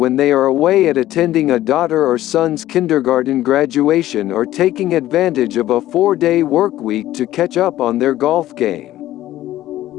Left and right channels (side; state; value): right; quieter; 14.2 dB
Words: they are away at attending a daughter or son's kindergarten graduation or taking advantage of a 4-day workweek to catch up on their golf game.